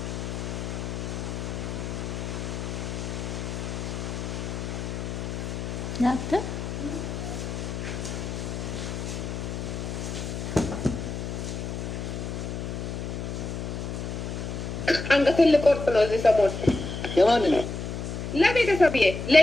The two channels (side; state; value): left; noise; hum, 5 dB below the sound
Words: ናተ አንገቴን ልቆርጥ ነው እዚህ ሰሞን። የማንን ነው? ለቤተሰብዬ፣